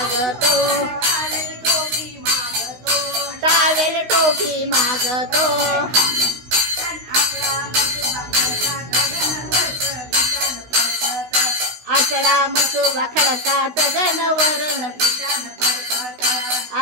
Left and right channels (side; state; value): left; late; 16 ms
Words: टावेल टोपी मागतो आसरा मसुबा खडकात गणवरण